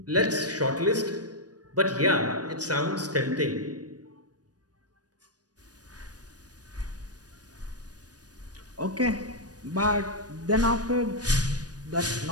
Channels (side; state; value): left; late; 0.69 ms